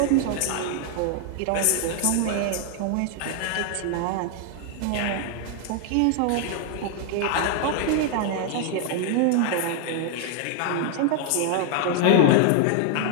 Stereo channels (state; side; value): different; both; correlation 0.00